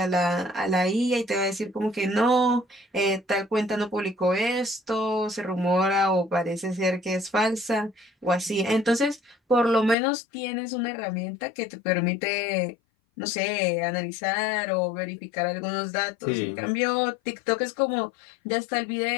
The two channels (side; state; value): right; drops out; at 10.0 s